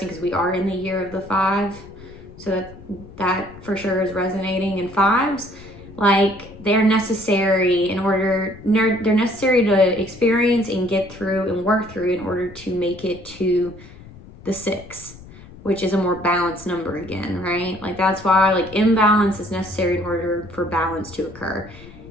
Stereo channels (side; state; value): left; noise; rumble, 19 dB below the sound